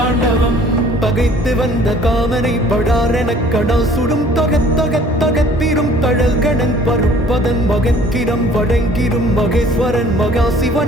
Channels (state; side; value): normal; both; correlation 0.54